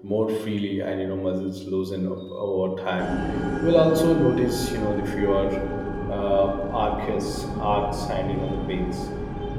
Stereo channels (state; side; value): identical; both; correlation 1.00